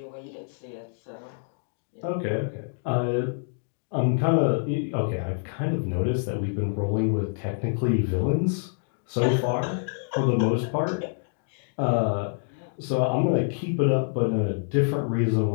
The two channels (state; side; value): silent; right; digital silence